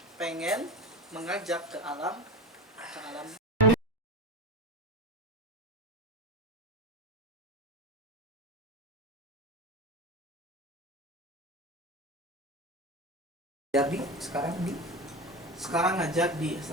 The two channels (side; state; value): both; normal; correlation 0.23